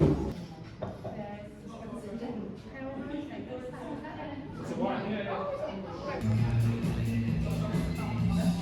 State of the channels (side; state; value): both; identical; correlation 1.00